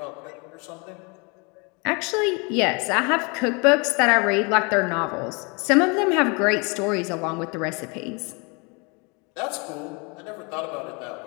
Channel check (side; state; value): right; quieter; 30.9 dB